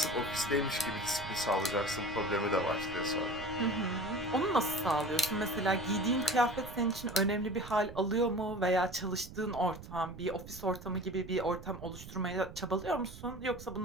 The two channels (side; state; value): right; noise; rumble, 14 dB below the sound